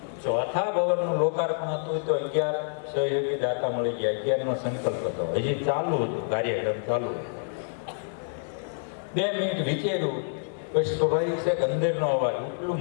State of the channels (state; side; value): silent; right; 60 dB below the other